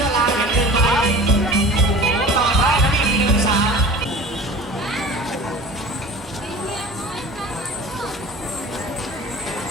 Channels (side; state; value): both; normal; correlation 0.40